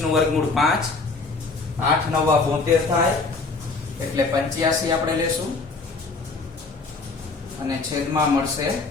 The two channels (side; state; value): right; quieter; 3.9 dB